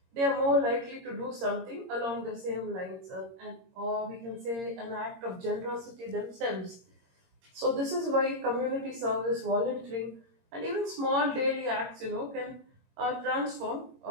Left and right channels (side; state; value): left; late; 22 ms